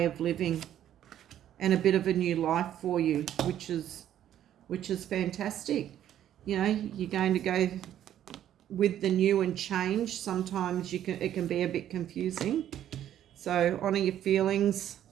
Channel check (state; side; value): quieter; left; 11.2 dB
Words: of living, and a bit of a new life for you, which is fantastic. You know, you're going to go with the new and change. Sometimes it can be a bit confusing. So honor your feelings,